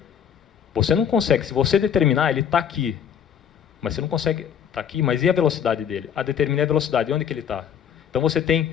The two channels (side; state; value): right; quieter; 8.4 dB